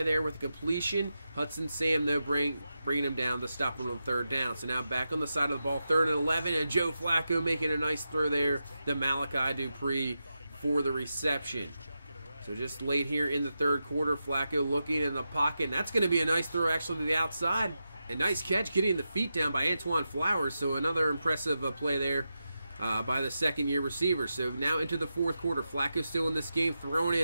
there with the completion. Hudson Sam, though, bringing him down to stop him on 3rd down. So now back on the side of the ball, 3rd and 11, and Joe Flacco making a nice throw there to Malachi Dupree for the reception. So just late here in the 3rd quarter, Flacco looking in the pocket, and that's going to be a nice throw actually to the outside. A nice catch getting the feet down by Antoine Flowers, so another impressive play there by the 2nd-year receiver. So now into the 4th quarter, Flacco still in this game, throwing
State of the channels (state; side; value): inverted; both; correlation -0.89